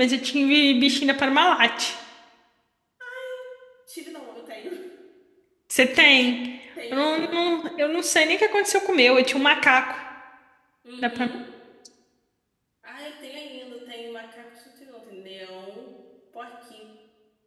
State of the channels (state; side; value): identical; both; correlation 1.00